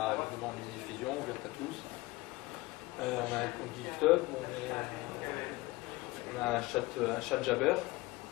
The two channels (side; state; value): right; quieter; 20.7 dB